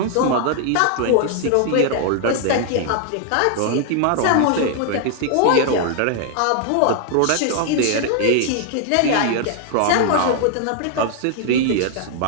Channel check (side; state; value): both; different; correlation 0.00